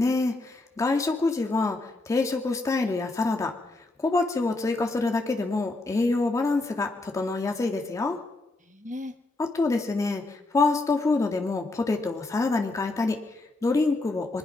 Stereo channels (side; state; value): right; quieter; 3.0 dB